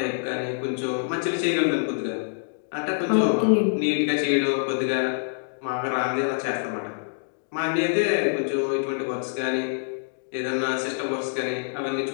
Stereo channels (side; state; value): right; silent; digital silence